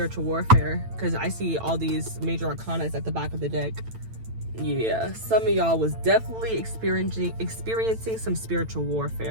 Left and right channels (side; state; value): left; late; 9.0 ms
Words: warfare, because I see all these major arcanas at the back of the deck. Yeah, some of y'all was definitely experiencing some spiritual